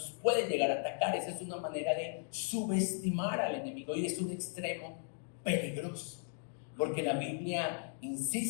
puede llegar a atacar. Esa es una manera de subestimar al enemigo y es un extremo peligroso. Porque la Biblia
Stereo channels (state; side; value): silent; right; 53 dB below the other